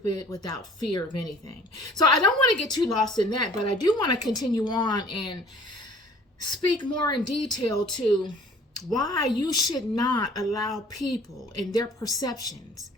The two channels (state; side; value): normal; both; correlation 0.52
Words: without fear of anything. So I don't want to get too lost in that, but I do want to continue on and speak more in detail to why you should not allow people and their perceptions